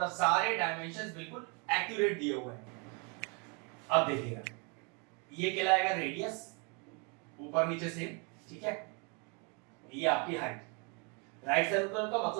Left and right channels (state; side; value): quieter; left; 33.6 dB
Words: सारे डायमेंशंस बिल्कुल एक्यूरेट दिए हुए हैं। अब देखिएगा, ये कहलाएगा रेडियस, ऊपर नीचे सेम। ठीक है, ये आपकी हाइट। राइट सर्कुलर का